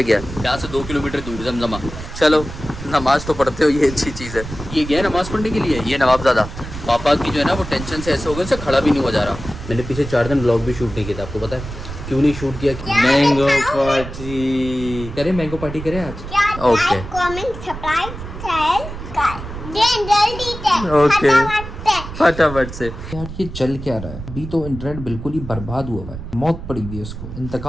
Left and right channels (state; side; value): noise; right; rumble, 10 dB below the sound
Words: गया? यहाँ से 2 किलोमीटर दूर जमजमा। चलो नमाज़ तो पढ़ते हो, ये अच्छी चीज़ है। ये गया नमाज़ पढ़ने के लिए, ये नवाबज़ादा। पापा की जो है ना वो टेंशन से ऐसे हो गए, से खड़ा भी नहीं हो जा रहा। मैंने पीछे 4 दिन ब्लॉग भी शूट नहीं किया था, आपको पता है क्यों नहीं शूट किया? मैंगो पार्टी करें, मैंगो पार्टी करें आज। ओके ओके फटाफट से। यार ये चल क्या रहा है? अभी तो इंटरनेट बिल्कुल ही बर्बाद हुआ है, मौत पड़ी हुई है इसको,